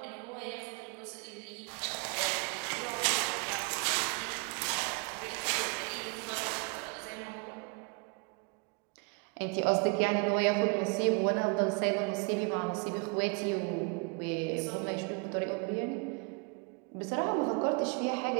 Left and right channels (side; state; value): left; quieter; 33.4 dB